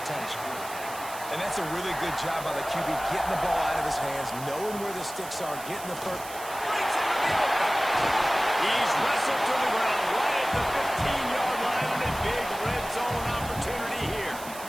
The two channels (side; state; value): right; noise; hiss, 13 dB below the sound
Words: And that's a really good job by the QB, getting the ball out of his hands, knowing where the sticks are, getting the first. Breaks into the open. He's wrestled to the ground right at the 15-yard line, and a big red zone opportunity here.